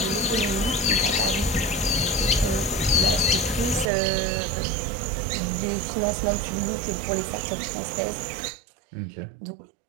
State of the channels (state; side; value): drops out; left; at 3.9 s